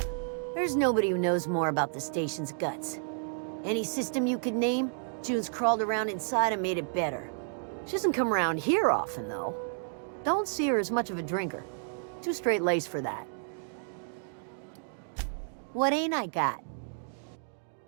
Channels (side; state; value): left; silent; digital silence